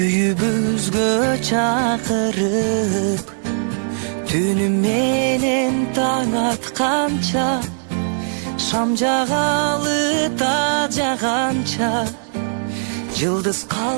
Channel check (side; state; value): left; silent; digital silence